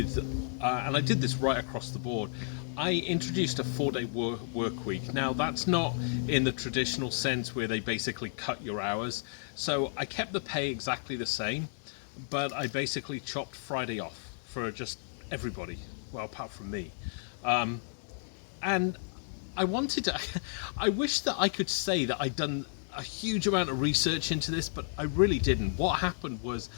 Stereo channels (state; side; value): silent; right; digital silence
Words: and I did this right across the board, I introduced a 4-day work week. Now that's not in the traditional sense where they basically cut your hours. So I kept the pay exactly the same, but I basically chopped Friday off for just everybody, well, apart from me. And I wanted to, I wish that I could say that I'd done a huge amount of research into this, but I really didn't. What happened was